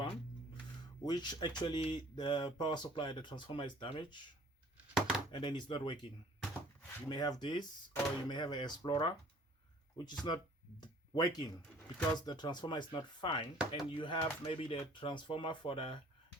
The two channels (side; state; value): both; normal; correlation 0.53